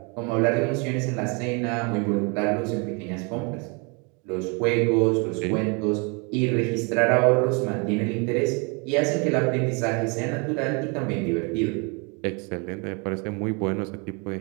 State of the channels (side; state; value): left; quieter; 32.3 dB